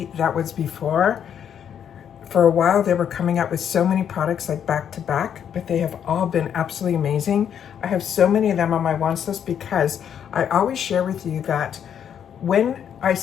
that was before. For a while, they were coming out with so many products like back to back, but they have all been absolutely amazing. I have so many of them on my wants list because I always share with you that when I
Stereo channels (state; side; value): quieter; right; 8.7 dB